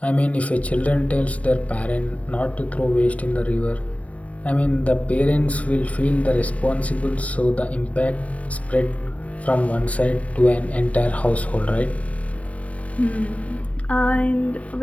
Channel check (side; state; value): right; late; 0.068 ms